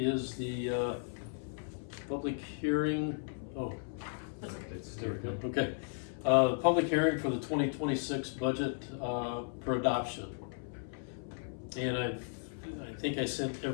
the public hearing. Oh, It's there we go. Okay. Public hearing for the 2026 budget for adoption. And I think I sent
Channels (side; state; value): right; silent; 54 dB below the other